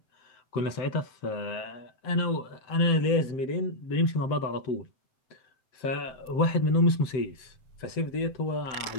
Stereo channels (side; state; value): right; late; 7.7 ms